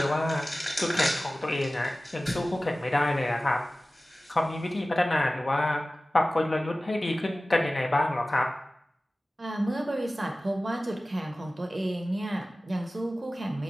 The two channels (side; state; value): both; normal; correlation 0.97